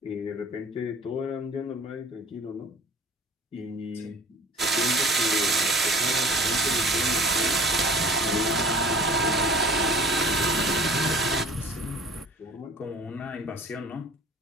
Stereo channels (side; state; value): both; normal; correlation 0.47